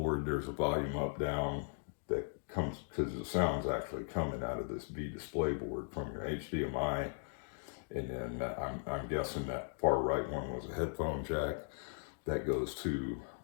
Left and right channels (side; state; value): right; silent; digital silence